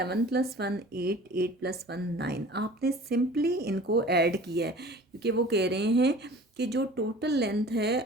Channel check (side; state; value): both; normal; correlation 0.44